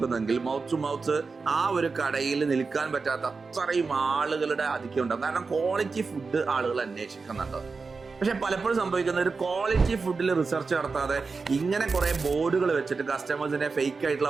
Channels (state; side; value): quieter; left; 4.5 dB